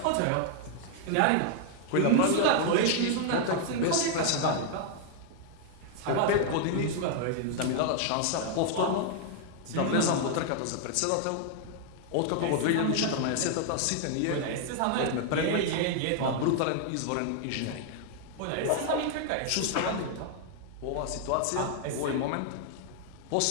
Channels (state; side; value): different; both; correlation 0.00